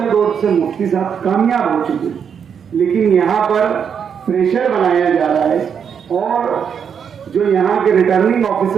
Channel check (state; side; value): quieter; left; 7.3 dB